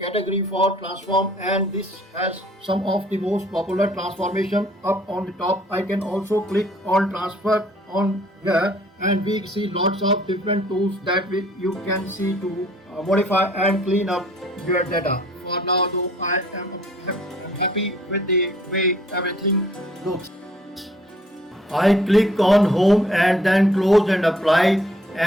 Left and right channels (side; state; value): both; normal; correlation 0.59